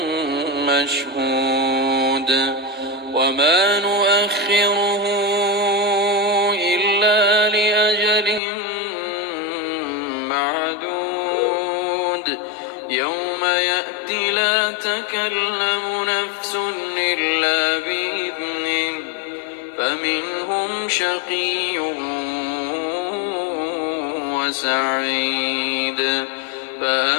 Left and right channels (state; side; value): drops out; right; at 8.4 s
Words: مشهود وما نؤخره إلا لأجل معدود يوم يأتي لا تكلم نفس إلا بإذنه فمنهم شقي وسعيد